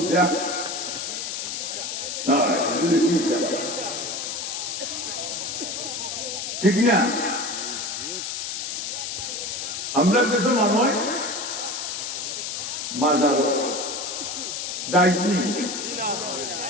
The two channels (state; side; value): noise; left; hiss, 4 dB below the sound